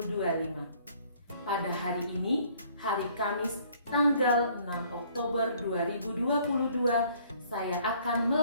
Pada hari ini, hari Kamis tanggal 6 Oktober 2022, saya akan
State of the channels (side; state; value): both; inverted; correlation -0.59